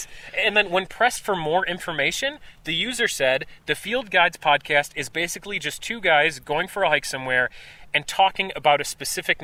And then when pressed for more information, the user said, the Field Guides podcast is basically just two guys going for a hike somewhere and talking about a specific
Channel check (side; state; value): both; identical; correlation 1.00